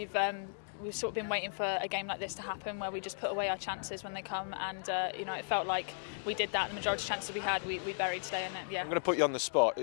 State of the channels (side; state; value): right; silent; digital silence